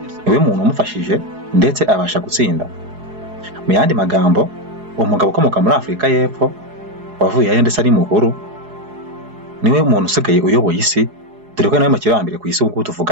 Niwe muntu umufashije ndetse abasha gutsinda. Mu yandi magambo, umugabo ukomoka muri Afurika y'Epfo wavuye aho ndetse ari mukuru niwe muntu usigaye uyoboye isi, dore ko nawe makiro wa mbere ku isi ubu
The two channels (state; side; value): late; left; 4.8 ms